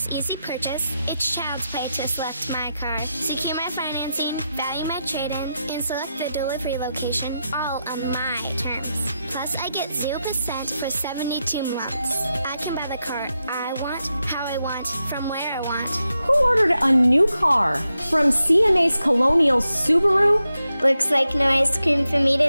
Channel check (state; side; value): inverted; both; correlation -0.87